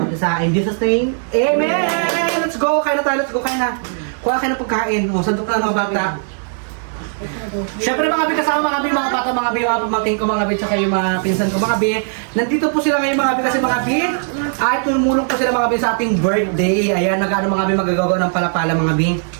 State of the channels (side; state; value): left; silent; digital silence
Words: isa. In Jesus name, Amen! Let's go! Kain na tayo, let's go, kain na. Kuha kayo ng pagkain. O, sandok na mga bata. Siyempre mga bi, kasama mga bi, mga bata, mga bi, mga pamangkin ko mga bi, tsaka yung mga pinsan ko mga bi. Nandito po sila ngayon mga bi kasi mga bi, ay tumulong po sila mga bi sa ating birthday. Ayan, nag-ano mga bi, magagawa ng palapala mga bi.